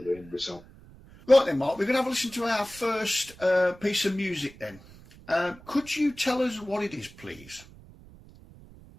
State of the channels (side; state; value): right; noise; rumble, 21 dB below the sound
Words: the end result. Right then, Mark, we're going to have a listen to our first piece of music then. Could you tell us what it is, please?